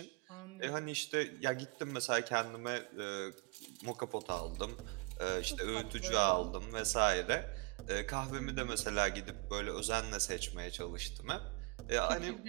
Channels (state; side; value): quieter; left; 27.6 dB